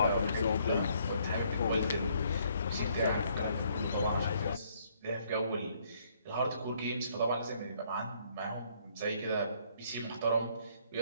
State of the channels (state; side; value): inverted; both; correlation -0.66